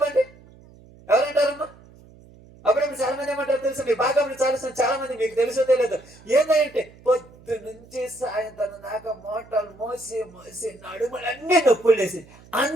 ఎవరంటారమ్మా? అప్పుడు చాలా మంది ఏమంటారు తెలుసు, మీ బాగా చాలా మంది మీకు తెలుసో తెలియదు. ఏంటంటే పొద్దు నుంచి సాయంత్రం దాకా మోటార్లు మోసి నడుములన్నీ నొప్పులు వేసి,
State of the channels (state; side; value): noise; right; hum, 24 dB below the sound